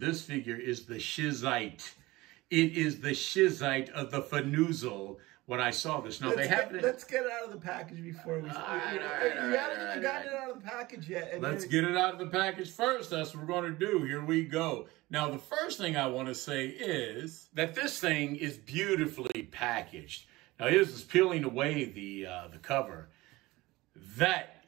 figure is the Shizite. It is the Shizite of the Fanoozle. When I saw this, now let's get it out of the package before we. You haven't got it out of the package yet. Let's get it out of the package first. That's what we're going to do. Here we go. Now, the first thing I want to say is that this thing is beautifully packaged. Now, here's this peeling away the cover. That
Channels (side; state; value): left; quieter; 20.1 dB